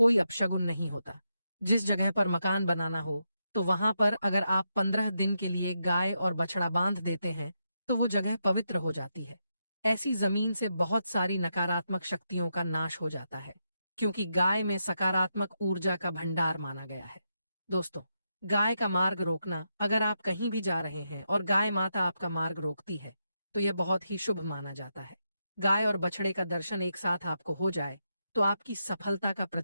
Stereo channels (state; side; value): inverted; both; correlation -0.83